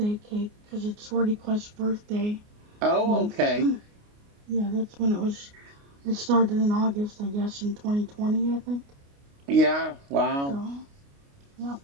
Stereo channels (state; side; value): late; left; 29 ms